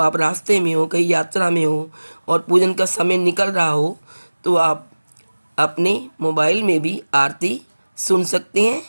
रास्ते में हो, कहीं यात्रा में हो और पूजन का समय निकल रहा हो, तो आप अपने मोबाइल में भी आरती सुन सकते हैं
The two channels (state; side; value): inverted; both; correlation -1.00